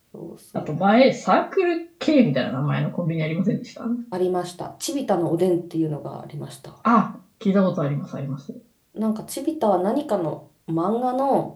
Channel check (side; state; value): both; identical; correlation 1.00